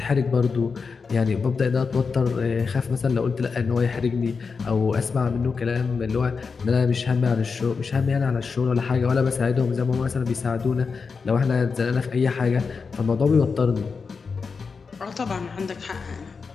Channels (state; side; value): quieter; right; 5.1 dB